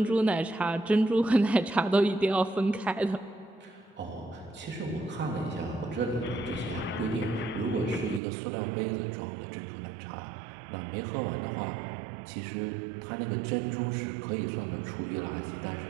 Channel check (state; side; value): drops out; left; at 8.2 s